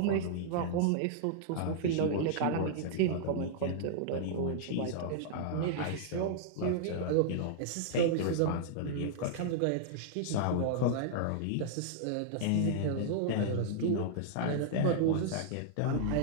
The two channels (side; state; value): both; different; correlation -0.01